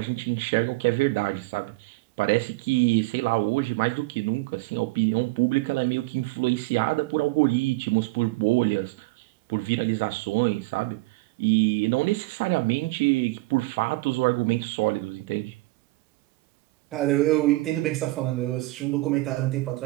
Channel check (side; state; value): left; quieter; 21.6 dB